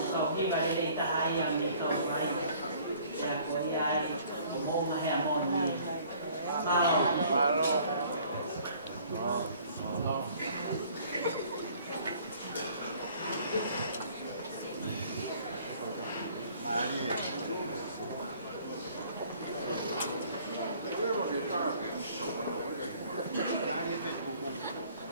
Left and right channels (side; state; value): both; inverted; correlation -0.55